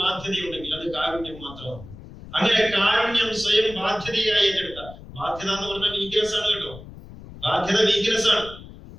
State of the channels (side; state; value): left; noise; rumble, 16 dB below the sound